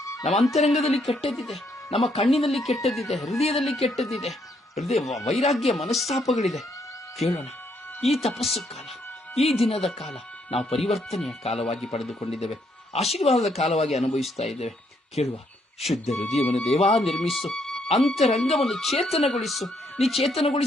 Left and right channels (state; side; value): normal; both; correlation 0.73